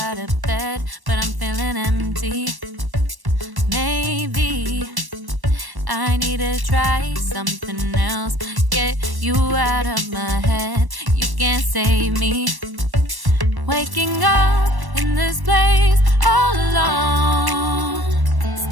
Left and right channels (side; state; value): left; late; 1.1 ms